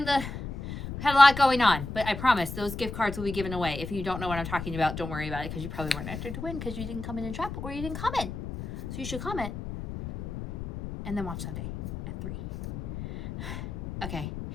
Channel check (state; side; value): noise; left; rumble, 8 dB below the sound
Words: had a lot going on, but I promise those gift cards will be given away. If you don't know what I'm talking about, don't worry about it because you probably weren't entered to win because you didn't come in and shop or you didn't comment. So you should comment and then watch Sunday at 3. Okay,